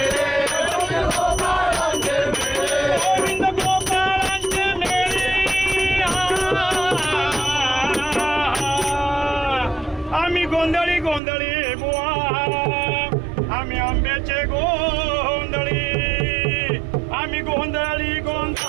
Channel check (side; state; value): left; drops out; at 11.2 s